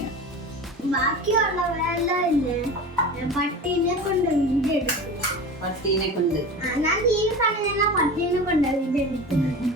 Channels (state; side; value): normal; both; correlation 0.32